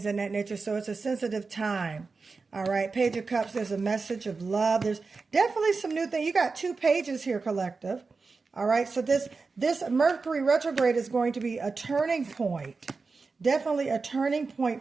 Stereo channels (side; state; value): left; quieter; 4.3 dB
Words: of that nature. So it's a sensitive time. All right, Page of Cups, there's a message of love. There's definitely some new things. You got 2 pages here, collective. All right, so this Mercury retrograde is going to be a turning point. Definitely a turning